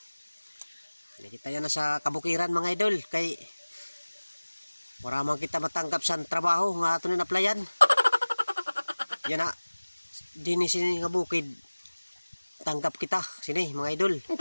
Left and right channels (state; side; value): inverted; both; correlation -1.00